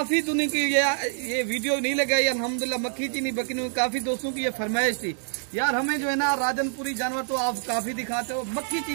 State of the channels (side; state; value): left; silent; digital silence